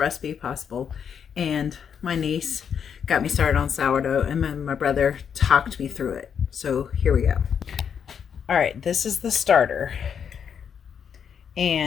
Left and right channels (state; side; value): quieter; right; 7.5 dB